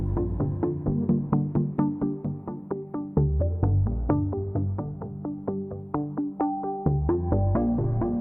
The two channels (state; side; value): late; right; 0.085 ms